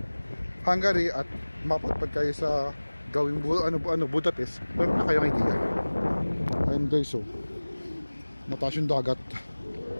Hungary at mapadpad kayo sa gawing Budapest, meron na kayong idea. Ayun guys, mataas yung dagat.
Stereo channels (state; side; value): inverted; both; correlation -1.00